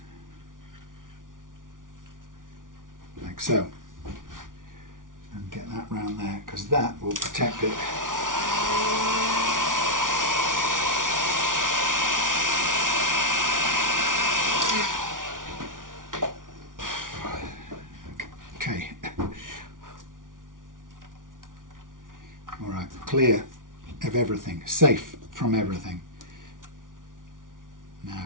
Like so. And get that round there, because that will protect it. Okay. Alright, clear of everything, safe from everything.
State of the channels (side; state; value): left; late; 0.88 ms